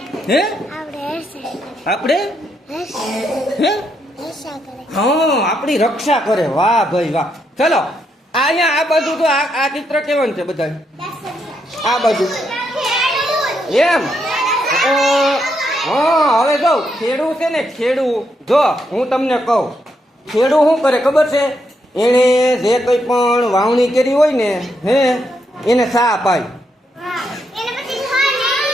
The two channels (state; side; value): normal; both; correlation 0.79